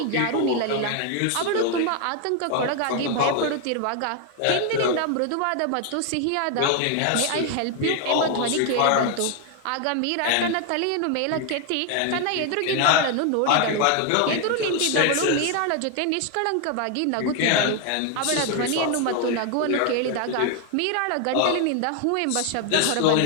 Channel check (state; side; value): different; both; correlation 0.00